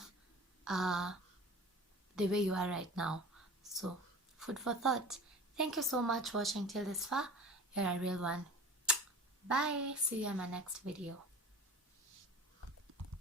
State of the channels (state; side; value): normal; both; correlation 0.38